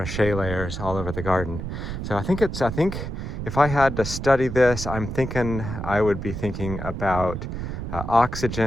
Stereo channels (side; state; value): right; noise; rumble, 6 dB below the sound